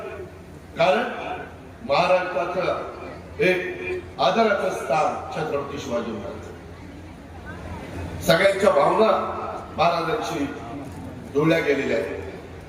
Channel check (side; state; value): both; identical; correlation 1.00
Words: कारण महाराष्ट्राचं एक आदराचं स्थान छत्रपती शिवाजी महाराज. सगळ्यांच्या भावना महाराजांशी जोडल्या गेलेल्या